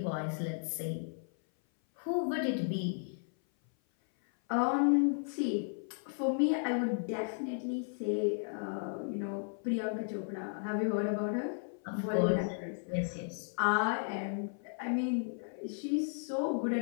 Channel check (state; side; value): silent; right; 55 dB below the other